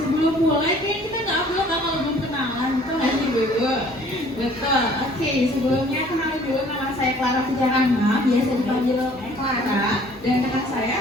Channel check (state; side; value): normal; both; correlation 0.55